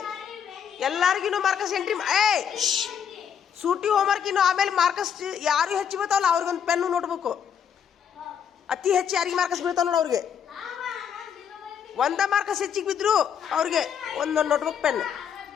ಎಲ್ಲರಿಗೂ ಮಾರ್ಕಸ್ ಎಂಟ್ರಿ. ಸೂಟಿ ಹೋಮ್ವರ್ಕ್ ಇನ್ನು ಆಮೇಲೆ ಮಾರ್ಕಸ್ ಯಾರು ಹೆಚ್ಚು ಬೀಳ್ತಾವಲ್ಲ ಅವ್ರಿಗೊಂದು ಪೆನ್ನು ನೋಟ್ಬುಕ್. ಅತಿ ಹೆಚ್ಚು ಯಾರಿಗೆ ಮಾರ್ಕಸ್ ಬೀಳ್ತಾವ ನೋಡು ಅವ್ರಿಗೆ. 1 ಮಾರ್ಕಸ್ ಹೆಚ್ಚಿಗೆ ಬಿದ್ರು ಅವ್ರಿಗೆ ಒಂದೊಂದು ನೋಟ್ಬುಕ್ ಪೆನ್.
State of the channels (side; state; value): right; quieter; 8.1 dB